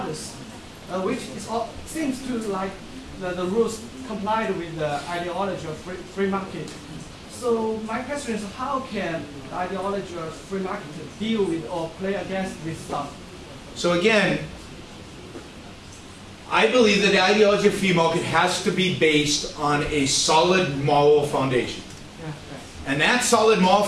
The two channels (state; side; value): identical; both; correlation 1.00